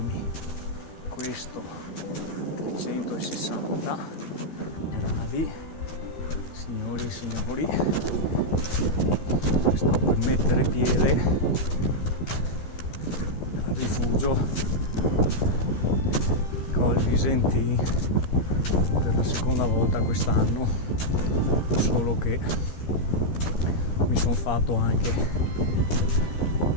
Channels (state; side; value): late; right; 13 ms